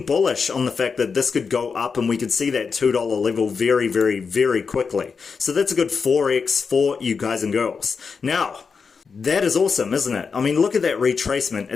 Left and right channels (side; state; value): right; quieter; 5.4 dB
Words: bullish on the fact that this could go up and we could see that $2 level very, very, very quickly. So that's a good 4x for you guys and girls. Now, that is awesome, isn't it? I mean, look at that retracement.